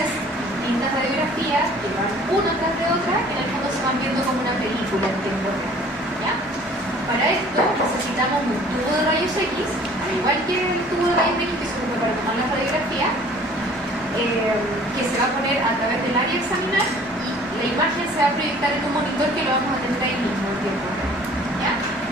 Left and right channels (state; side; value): normal; both; correlation 0.52